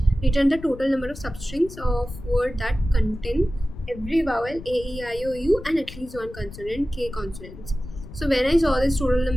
Return the total number of substrings of word that contain every vowel a, e, I, o, u and at least one consonant k consonants. So when I saw this total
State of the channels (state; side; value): noise; left; rumble, 15 dB below the sound